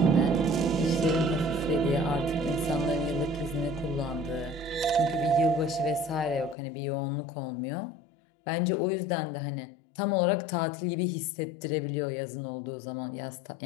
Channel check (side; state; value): right; drops out; at 6.6 s